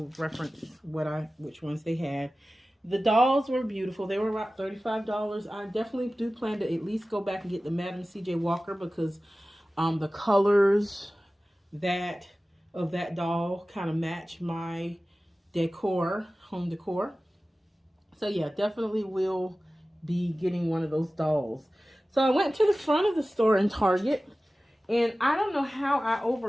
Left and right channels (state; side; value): normal; both; correlation 0.96